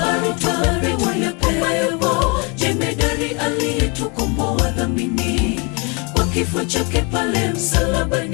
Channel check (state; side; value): quieter; right; 31.6 dB